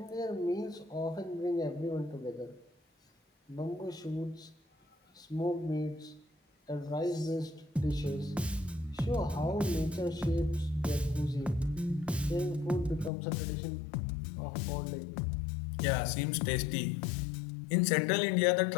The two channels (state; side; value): drops out; right; at 13.1 s